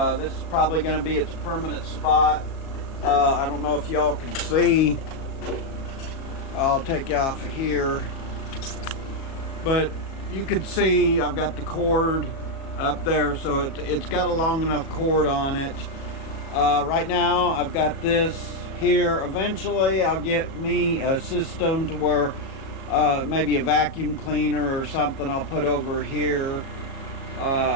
This is probably going to be its permanent spot. I don't know if y'all can see. I'll take you off of here, but you can see I've got the cord up there, so it's got a long enough cord on it. Right now I've got this here. Eventually I'll get me a system to where maybe a vacuum cleaner or something I'll put over here.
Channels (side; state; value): right; late; 37 ms